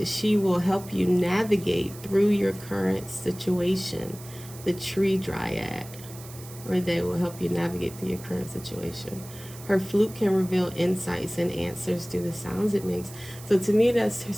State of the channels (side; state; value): right; noise; hiss, 17 dB below the sound